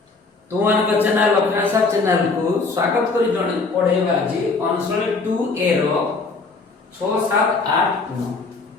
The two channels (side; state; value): right; quieter; 4.0 dB